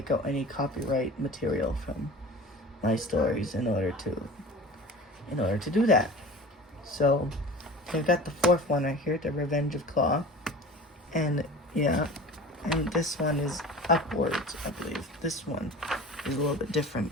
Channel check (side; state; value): both; normal; correlation 0.38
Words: out any copyright material from my stories in order to do that. So I've got the fourth one right here, The Revenge of Claw, and yeah, and this one is upwards, I believe. This one is a little bit